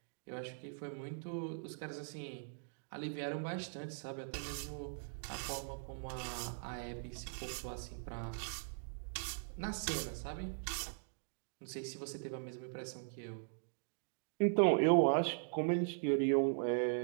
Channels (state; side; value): silent; left; digital silence